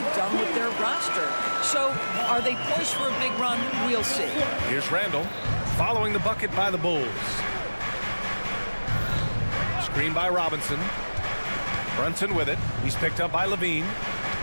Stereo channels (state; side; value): inverted; both; correlation -1.00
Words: done with their roster. So, are they poised for a big run? We'll see. Here's Randall, following the bucket by the Bulls. Screen by Robinson. Brunson with it. He's picked up by Levine.